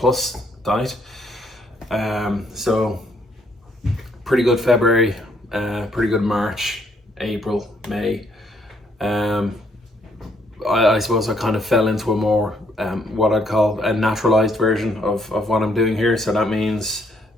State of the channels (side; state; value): both; normal; correlation 0.70